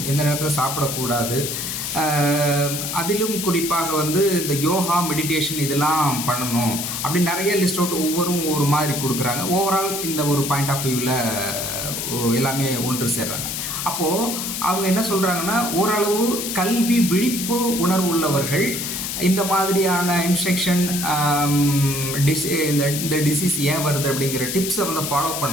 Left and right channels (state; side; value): noise; left; hiss, 4 dB below the sound